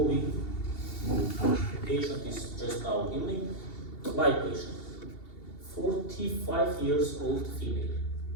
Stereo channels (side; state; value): right; late; 2.7 ms